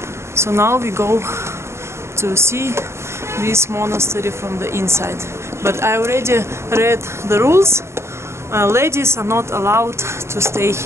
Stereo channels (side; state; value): left; late; 0.13 ms